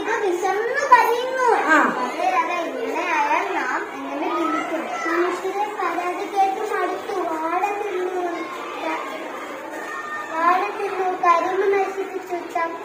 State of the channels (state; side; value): identical; both; correlation 1.00